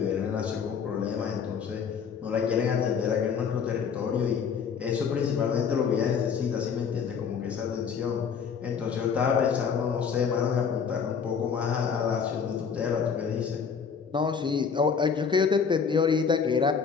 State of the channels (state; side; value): quieter; right; 6.5 dB